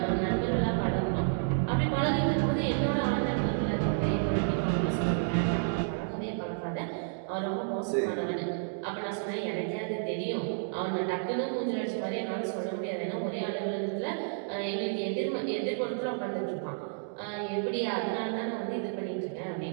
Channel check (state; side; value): silent; left; digital silence